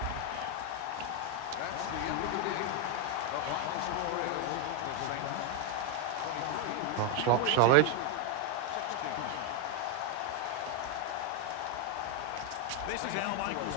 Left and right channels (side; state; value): both; different; correlation 0.01